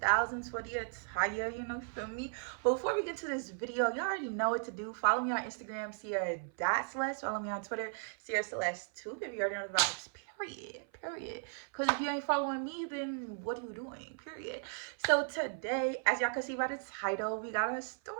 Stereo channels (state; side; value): silent; left; 54 dB below the other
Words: for the attire, feel me? But before we get to this video, y'all already know what to do. Follow me on Instagram, Ciara.Celeste. Follow me on Twitter, Ciara Celeste 2, if you already know the vibes. Period. Because if you ain't following me, then what are you doing? Period. So today, as y'all can see by the title, we got a story